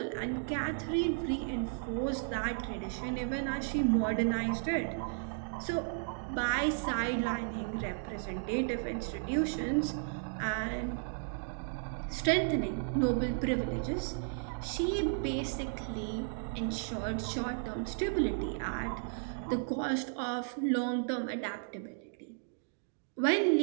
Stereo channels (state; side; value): silent; left; digital silence